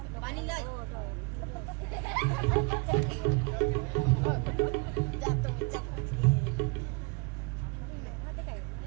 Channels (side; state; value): left; quieter; 30.6 dB